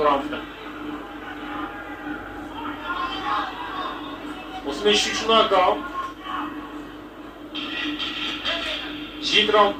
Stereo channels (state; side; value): identical; both; correlation 1.00